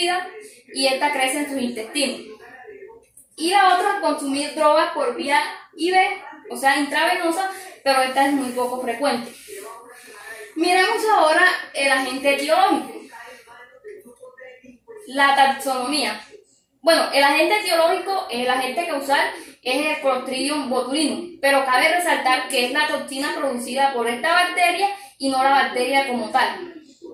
y esta crece en sus intestinos. Y la otra, consumir drogas por vía IV, o sea, intravenosa, pero esta es muy poco frecuente. Miremos ahora el agente etiológico. La taxonomía. Bueno, el agente etiológico, el agente causal, es el Clostridium botulinum, pero cabe resaltar que es la toxina producida por esta bacteria y no la bacteria como tal.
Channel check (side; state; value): both; identical; correlation 1.00